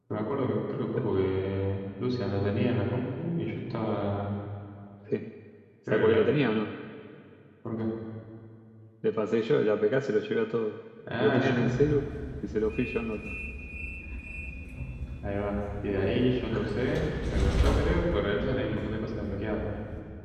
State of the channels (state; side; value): identical; both; correlation 1.00